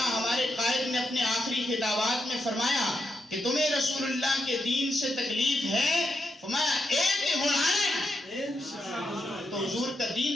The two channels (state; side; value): normal; both; correlation 0.84